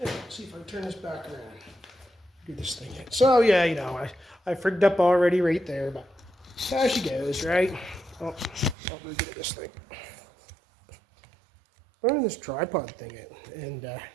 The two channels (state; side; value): drops out; left; at 8.8 s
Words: let's see if I can turn this back around. Do this thing in. So yeah, you know, I frigged up already right there, but there she goes, right? Oh, I'll really get at this thing. Running this tripod thing out and